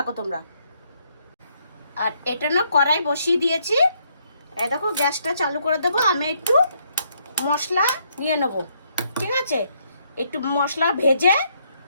তোমরা। আর এটা না কড়াই বসিয়ে দিয়েছি। এই দেখো, গ্যাসটা চালু করে দেবো। আমি একটু মশলা নিয়ে নেব, ঠিক আছে? একটু মশলা ভেজে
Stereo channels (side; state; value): both; inverted; correlation -0.72